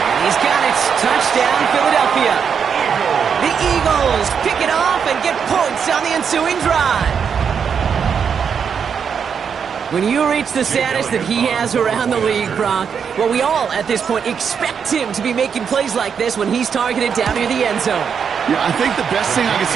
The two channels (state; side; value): quieter; left; 6.9 dB